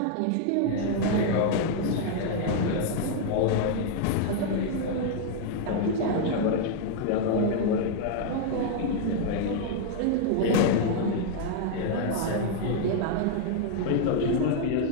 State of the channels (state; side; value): different; both; correlation 0.00